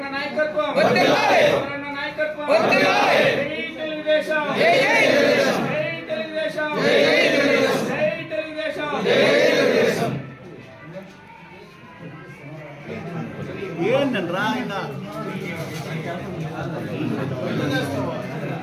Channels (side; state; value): both; identical; correlation 1.00